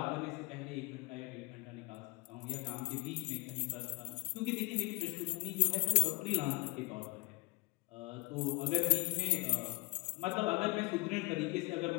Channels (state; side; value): quieter; right; 27.1 dB